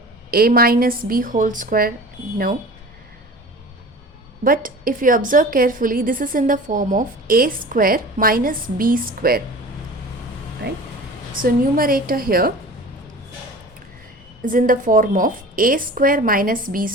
A minus b whole square? No. But if you observe carefully, this is in the form of a square minus b square, right? So numerator here is in the form of a square minus b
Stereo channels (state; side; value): normal; both; correlation 0.39